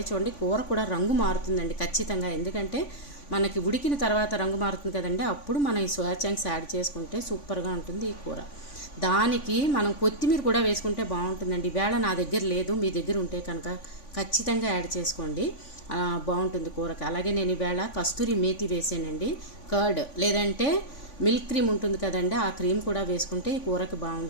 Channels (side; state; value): right; late; 3.5 ms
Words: చూడండి, కూర కూడా రంగు మారుతుందండి ఖచ్చితంగా. ఎందుకంటే మనకి ఉడికిన తర్వాత రంగు మారుతుంది కదండి, అప్పుడు మనం ఈ సోయా చంక్స్ యాడ్ చేసుకుంటే సూపర్గా ఉంటుంది ఈ కూర. దానికి మనం కొత్తిమీర కూడా వేసుకుంటే బాగుంటుందండి. ఈవేళ నా దగ్గర లేదు, మీ దగ్గర ఉంటే కనుక ఖచ్చితంగా యాడ్ చేసుకోండి, బాగుంటుంది కూరకి. అలాగే నేను ఈవేళ కస్తూరి మేతి వేసానండి, కర్డ్ లేదంటే మిల్క్ క్రీమ్ ఉంటుంది కదండి, ఆ క్రీమ్ కూడా వేసుకుంటే ఈ కూరకి